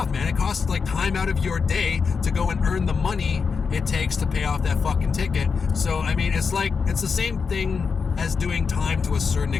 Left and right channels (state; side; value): quieter; right; 5.5 dB